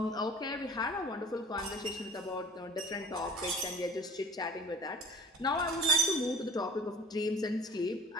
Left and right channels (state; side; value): normal; both; correlation 0.43